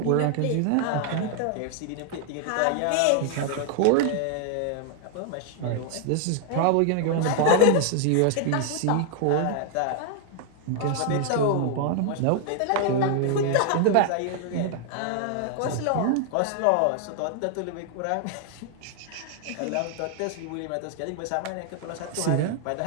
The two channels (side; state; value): both; different; correlation 0.00